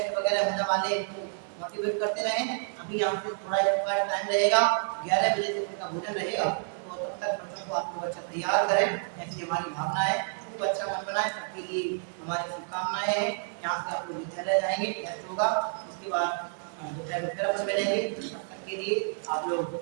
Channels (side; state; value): left; silent; 58 dB below the other